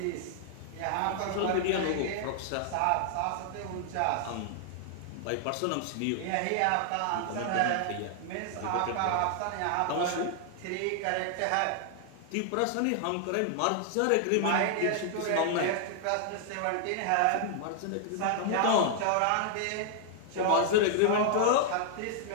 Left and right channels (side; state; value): both; different; correlation 0.00